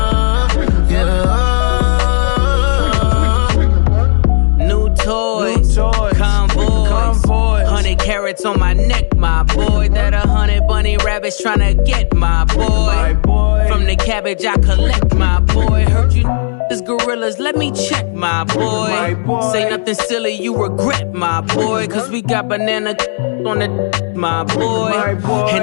Yeah. New toys, convoys, 100 carats on my neck, my boy. That 100 bunny rabbits tryna get my boy. From the cabbage I collect, my boy. Heard you this gorillas, let me check, my boy. Say nothing silly, you regret, my boy. Cause we got banana on the my boy.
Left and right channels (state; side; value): silent; right; digital silence